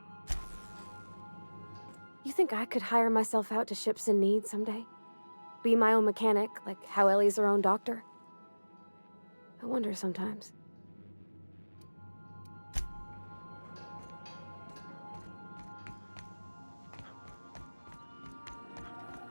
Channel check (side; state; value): both; inverted; correlation -1.00